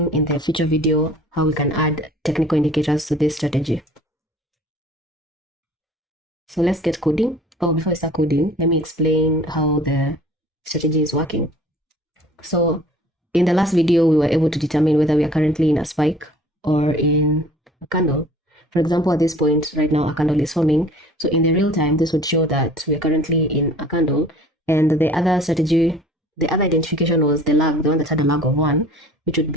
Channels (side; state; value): both; normal; correlation 0.49